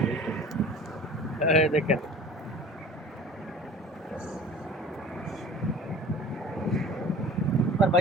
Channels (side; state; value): both; normal; correlation 0.43